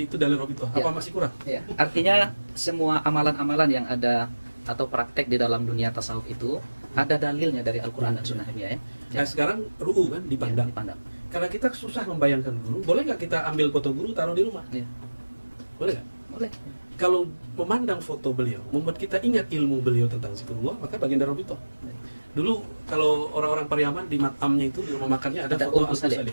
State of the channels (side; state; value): both; inverted; correlation -1.00